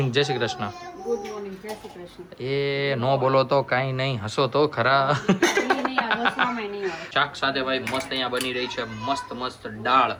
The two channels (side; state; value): both; identical; correlation 1.00